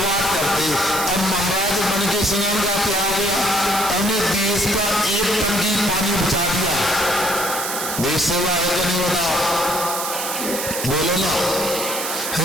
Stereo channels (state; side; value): noise; right; hiss, 4 dB below the sound